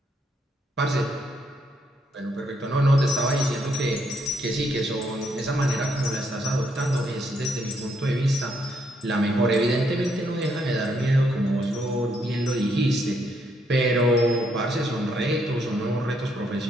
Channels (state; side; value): normal; both; correlation 0.74